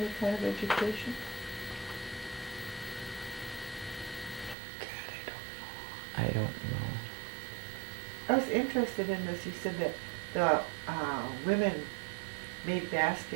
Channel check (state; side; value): drops out; left; at 4.5 s